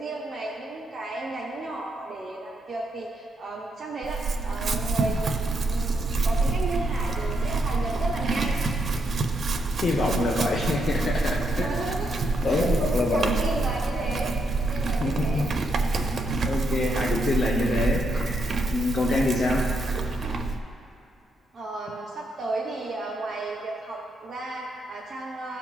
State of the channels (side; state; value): both; normal; correlation 0.78